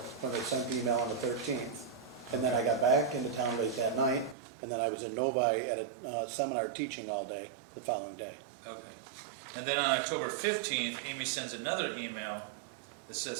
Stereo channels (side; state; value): left; drops out; at 4.4 s